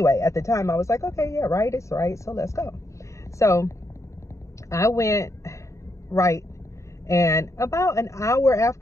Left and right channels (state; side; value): late; right; 0.15 ms